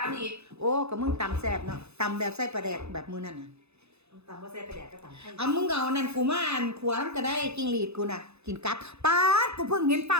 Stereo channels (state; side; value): late; left; 0.80 ms